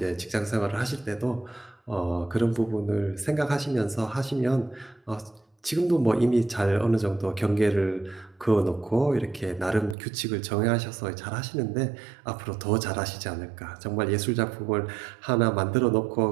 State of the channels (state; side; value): drops out; left; at 10.0 s